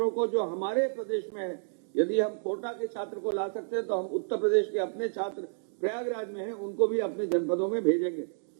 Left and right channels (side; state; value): left; silent; digital silence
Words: को जो हमारे प्रदेश में है, यदि हम कोटा के छात्र को ला सकते हैं तो हम उत्तर प्रदेश के अपने छात्र प्रयागराज में हैं उनको भी अपने जनपदों में भेजेंगे।